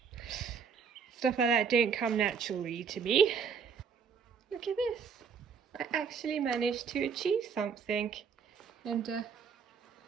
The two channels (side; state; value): left; quieter; 6.3 dB